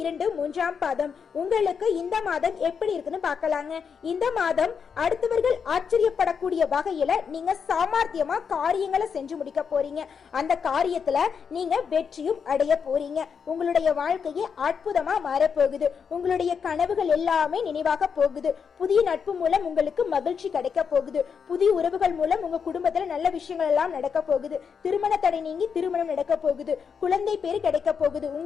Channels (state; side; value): quieter; right; 6.4 dB